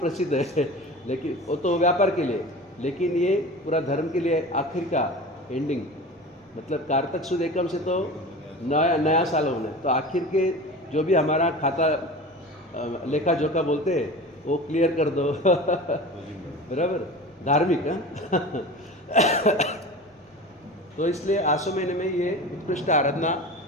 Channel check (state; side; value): normal; both; correlation 0.34